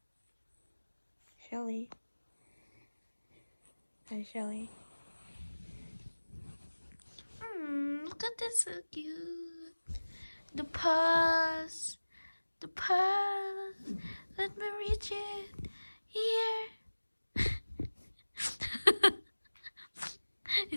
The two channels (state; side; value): inverted; both; correlation -1.00